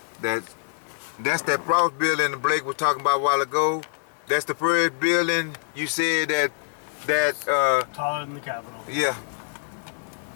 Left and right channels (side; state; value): right; silent; digital silence